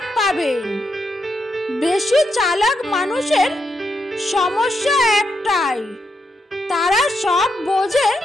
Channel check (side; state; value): both; normal; correlation 0.82